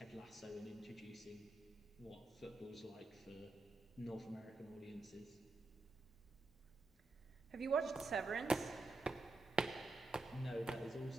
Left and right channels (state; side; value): quieter; left; 3.0 dB